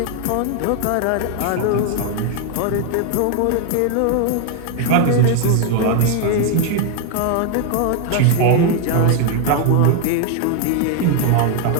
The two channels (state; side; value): different; both; correlation 0.00